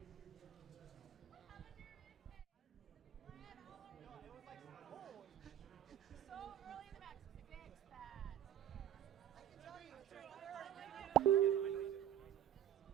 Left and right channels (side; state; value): left; quieter; 10.9 dB